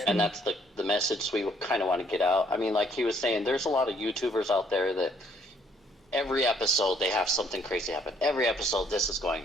And that's the message we kind of want to get out. I mean, like he was saying, there's a lot of YouTubers out there that every episode they have something crazy happen. Every episode this is going.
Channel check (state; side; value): normal; both; correlation 0.65